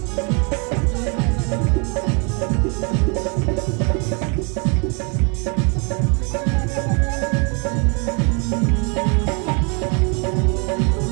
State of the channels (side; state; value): left; quieter; 34.5 dB